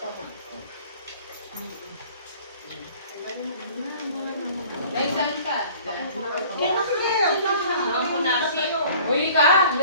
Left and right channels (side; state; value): both; inverted; correlation -0.49